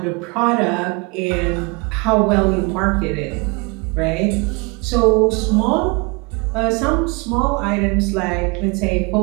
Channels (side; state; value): left; quieter; 28.6 dB